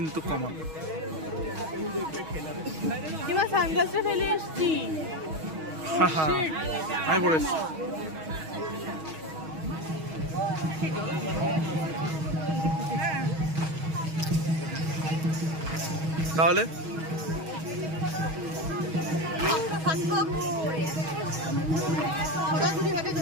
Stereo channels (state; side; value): late; left; 6.3 ms